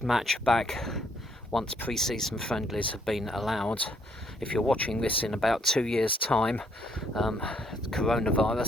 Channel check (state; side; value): normal; both; correlation 0.69